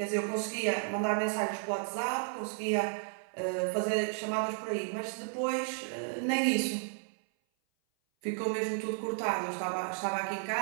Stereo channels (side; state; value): left; silent; 56 dB below the other